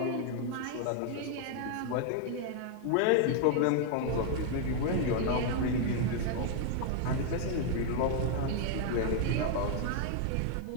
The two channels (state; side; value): different; both; correlation 0.00